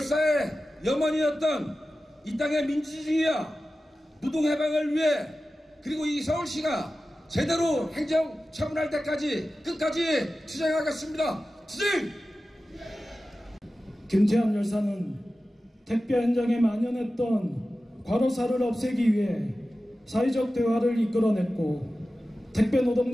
염원이었던 이 땅의 민주주의와 노동해방을 위해, 그리고 이 서울시가 제대로 행정 처분할 때까지 끝까지 투쟁하겠습니다. 투쟁! 김태환 열사는 택배 현장에 만연했던 과로사를 없애기 위해 사회적 대화를 이끌어냈고, 택배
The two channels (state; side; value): normal; both; correlation 0.94